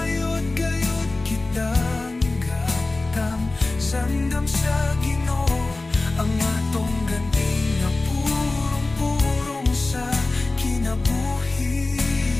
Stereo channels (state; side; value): quieter; right; 3.2 dB